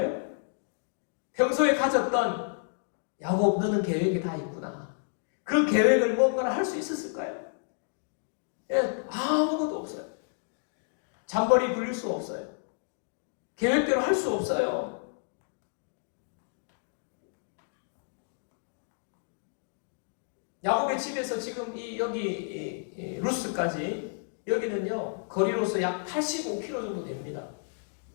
평소에 가졌던 야곱, 너는 계획이 다 있구나. 그 계획을 뭔가를 할 수 있었을까요? 예, 아무것도 없어요. 잔머리 굴릴 수 없어요. 계획대로 할 수 없어요. 야곱의 집에서 지금 여기 루스까지, 여기는요 거리로서 약 85km 정도 됩니다.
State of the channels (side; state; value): right; silent; digital silence